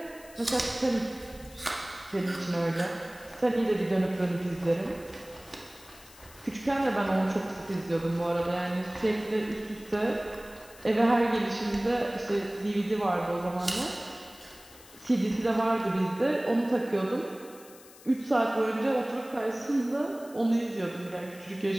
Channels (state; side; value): noise; left; hiss, 21 dB below the sound